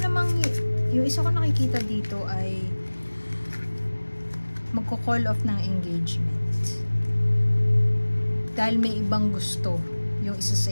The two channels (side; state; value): both; inverted; correlation -1.00